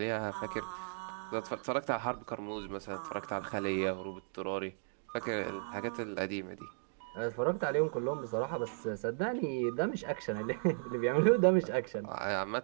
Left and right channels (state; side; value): silent; left; digital silence